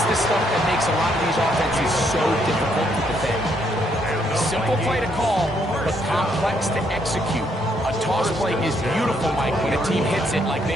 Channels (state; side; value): normal; both; correlation 0.72